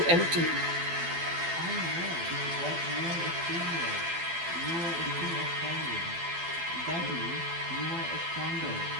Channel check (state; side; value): late; left; 12 ms